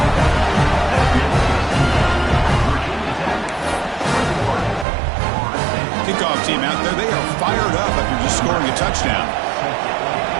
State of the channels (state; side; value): drops out; left; at 4.9 s